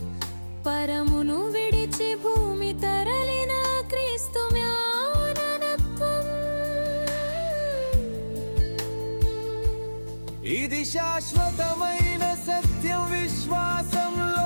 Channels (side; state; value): both; inverted; correlation -1.00